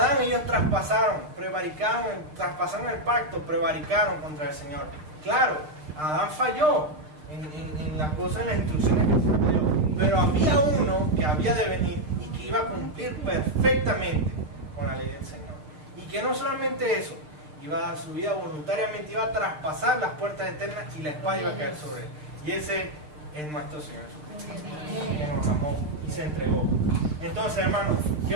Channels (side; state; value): left; late; 6.6 ms